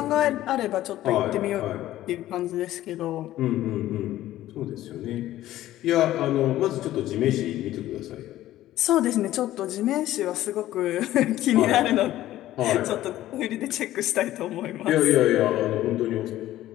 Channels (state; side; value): quieter; right; 14.4 dB